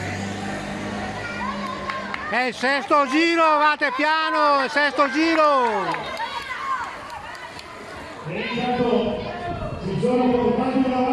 È il sesto giro, vate piano, il sesto giro! E intanto si sono portati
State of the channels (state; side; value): identical; both; correlation 1.00